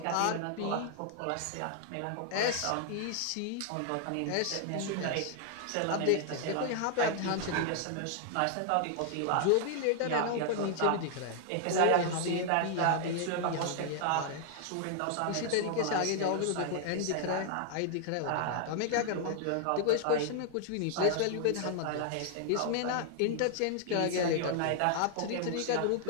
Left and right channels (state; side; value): different; both; correlation 0.00